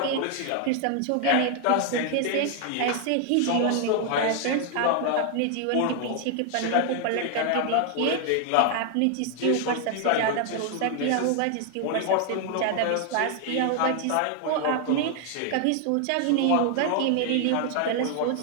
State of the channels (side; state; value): both; different; correlation 0.00